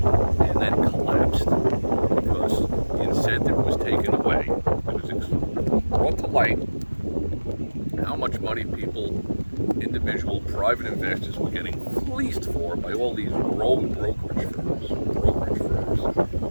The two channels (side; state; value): both; inverted; correlation -1.00